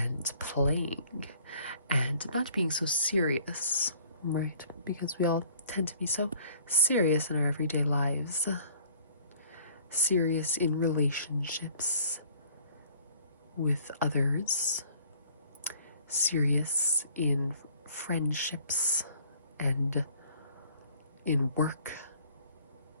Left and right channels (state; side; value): inverted; both; correlation -0.55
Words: playing and not being so serious, right? Because we all tend to be so serious in our everyday lives. serious in relationships with others, serious in friendships and in work